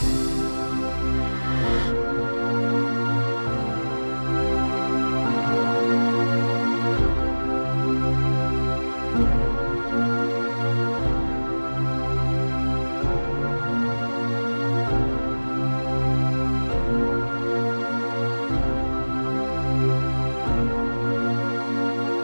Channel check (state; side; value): inverted; both; correlation -1.00